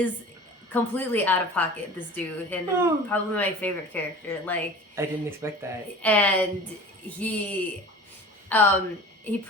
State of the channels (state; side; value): normal; both; correlation 0.40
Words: completely out of pocket, this dude, and probably my favorite character. I didn't expect that. And he